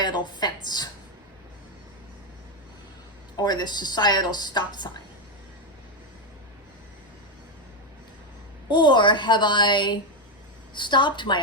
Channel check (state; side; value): normal; both; correlation 0.06